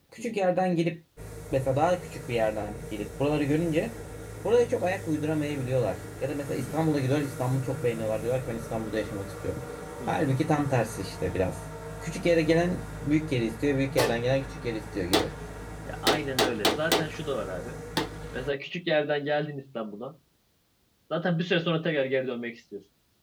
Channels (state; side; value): identical; both; correlation 1.00